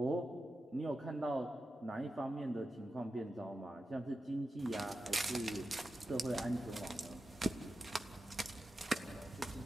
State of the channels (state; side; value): normal; both; correlation 0.91